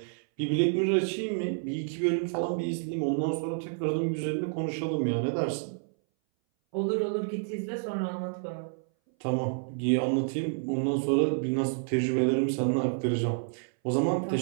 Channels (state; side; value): silent; left; 58 dB below the other